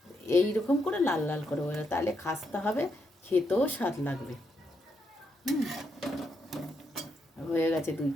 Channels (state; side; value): normal; both; correlation 0.79